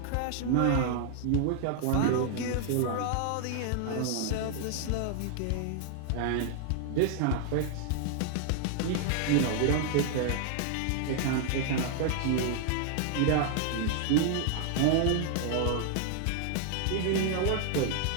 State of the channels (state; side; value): different; both; correlation 0.00